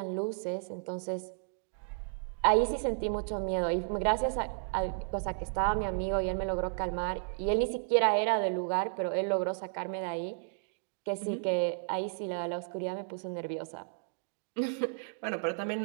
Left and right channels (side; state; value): left; silent; digital silence